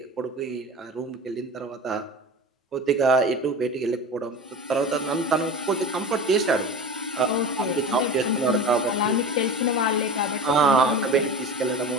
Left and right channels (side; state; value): both; normal; correlation 0.32